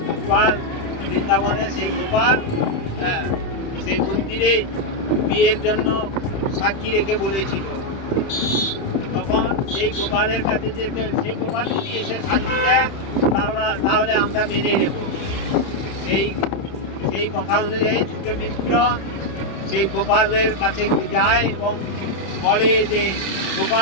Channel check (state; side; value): late; right; 31 ms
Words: গোপাল বৃন্দাবনে সেই গোপাল সেই মন্দিরে বিয়ের জন্য সাক্ষী রেখে বলেছিল। তখন সেই গোপালের কাছে যে সেই গোপাল যদি এসে সাক্ষী দেয় তাহলে আমরা মেনে নেব। সেই কথা অনুযায়ী ছোট মিত্র সেই গোপালের কাছে যায় এবং বলে যে